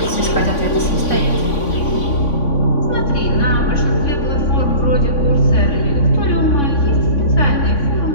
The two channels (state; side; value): late; right; 3.5 ms